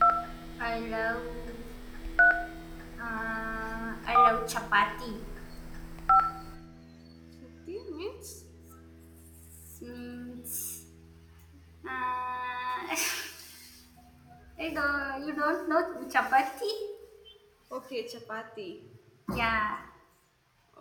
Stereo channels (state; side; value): identical; both; correlation 1.00